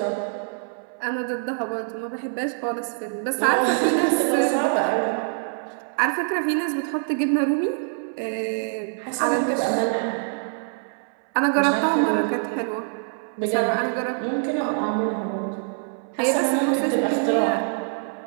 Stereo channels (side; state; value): left; silent; 62 dB below the other